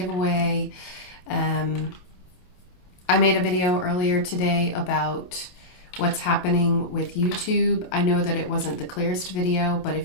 I made a video earlier today about what's happening with YouTube. I know that it wasn't the clearest video, but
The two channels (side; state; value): right; late; 28 ms